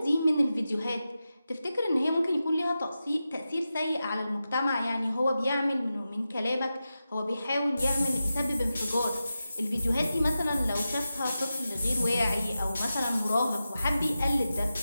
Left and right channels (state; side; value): inverted; both; correlation -0.92